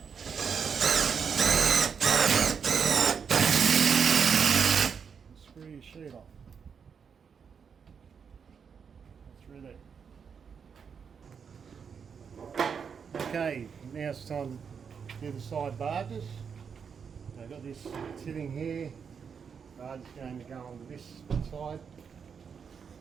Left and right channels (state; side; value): quieter; left; 6.6 dB